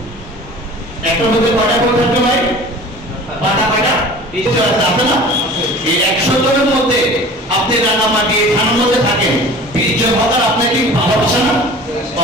একটা মধ্যে কটা ভোট থাকবে ভাই? পাটা নিশ্চয় আছে না? এই 100 জনের মধ্যে আপনি রাঙামাটি থানার মধ্যে থাকেন, 20 জন হকার আপনাকে ভালোবাসে না?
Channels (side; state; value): both; normal; correlation 0.42